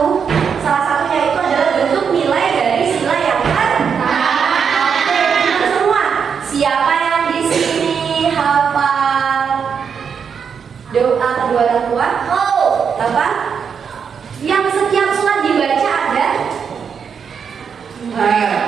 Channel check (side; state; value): left; quieter; 6.7 dB